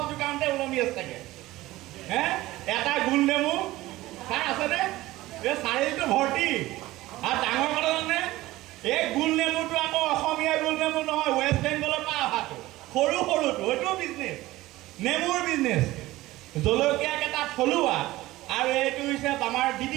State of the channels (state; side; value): quieter; left; 17.6 dB